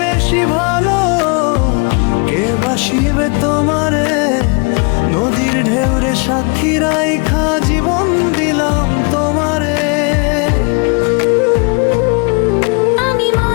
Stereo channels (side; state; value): right; quieter; 34.1 dB